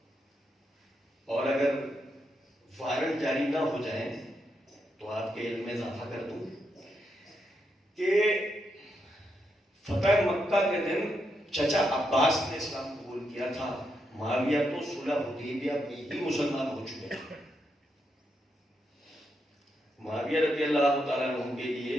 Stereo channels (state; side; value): normal; both; correlation 0.82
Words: اور اگر وائرل جاری نہ ہو جائیں تو آپ کے علم میں اضافہ کر دوں کہ فتح مکہ کے دن چچا عباس نے اسلام قبول کیا تھا. معاویہ تو صلح حدیبیہ میں ہی مسلمان ہو چکے ہیں. معاویہ رضی اللہ تعالیٰ عنہ کے لیے